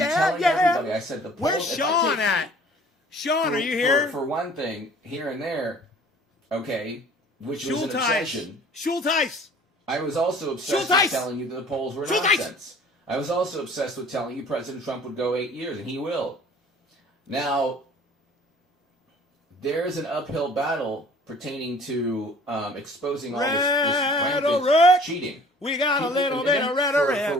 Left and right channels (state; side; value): normal; both; correlation 0.51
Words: telling everybody. I said the polls. Where's Sean at? Sean, are you here? For one thing, here and there, okay, which was an obsession. Schulteis. I was also obsessed with telling you that the polls were nonsense. I was also obsessed with telling you President Trump would go 8 years, and he will. Now, there's an uphill battle pertaining to exposing all this rampant cheating. We got a little bit of rhetoric. For